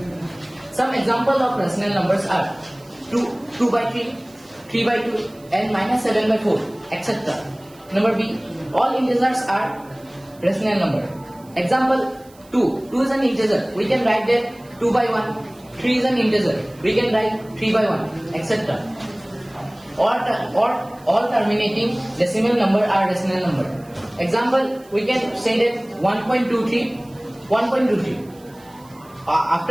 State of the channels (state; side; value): noise; right; hiss, 27 dB below the sound